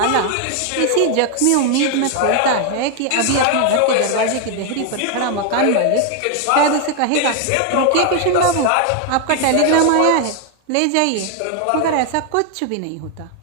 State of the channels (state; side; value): different; both; correlation 0.01